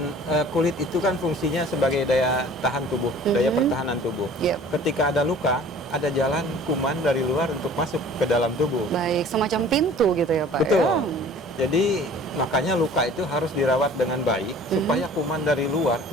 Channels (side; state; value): both; normal; correlation 0.47